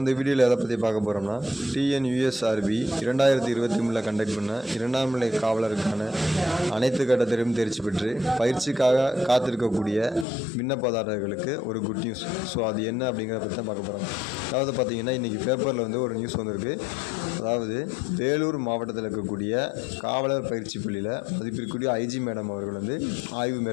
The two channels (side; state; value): right; drops out; at 10.2 s